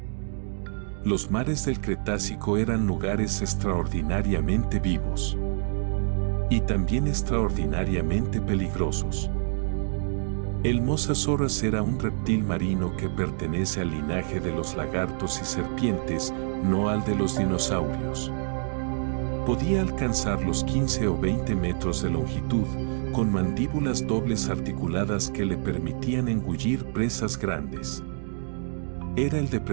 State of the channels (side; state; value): left; silent; digital silence